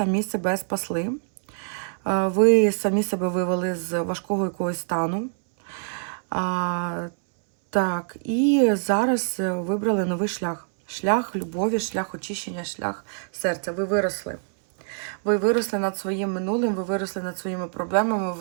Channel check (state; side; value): silent; left; 62 dB below the other